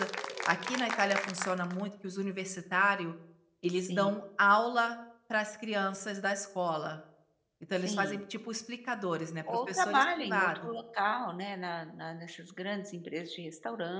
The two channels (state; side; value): identical; both; correlation 1.00